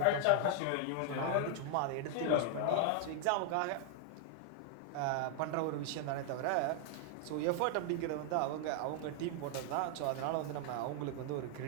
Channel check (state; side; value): different; both; correlation 0.00